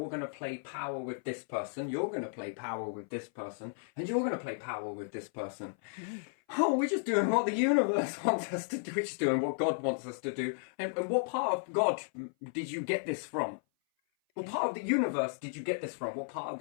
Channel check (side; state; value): right; silent; 55 dB below the other